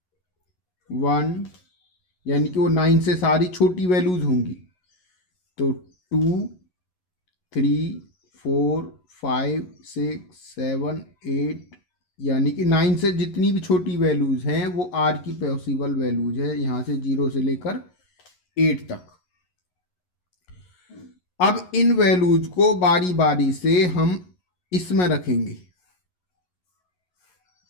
1, यानी कि वो 9 से सारी छोटी वैल्यूज होंगी। तो 2, 3, 4, 5, 6, 7, 8, यानी कि 9 से जितनी भी छोटी वैल्यूज हैं वो r की पॉसिबल वैल्यूज है, यहाँ से 0 से लेकर 8 तक। अब इन वैल्यूज को बारी बारी से हम इसमें रखेंगे।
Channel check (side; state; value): right; late; 11 ms